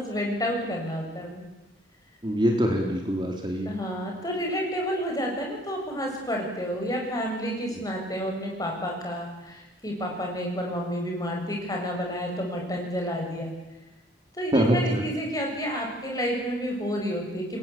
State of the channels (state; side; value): normal; both; correlation 0.58